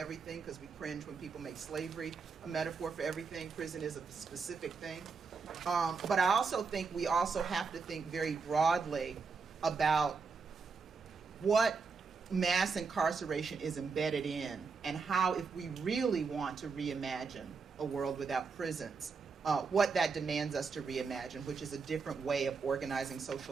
because we cringe when people make slavery a metaphor for everything. Prison is a specific thing. But I also think we also have to think very broadly about what mass incarceration is embedded in, and how, if we really want to reimagine a world without prisons, what that demands us to reimagine, which is a different way of organizing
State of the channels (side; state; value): left; quieter; 4.9 dB